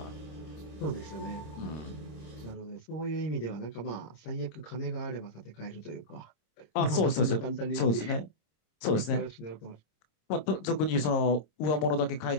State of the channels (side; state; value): right; late; 26 ms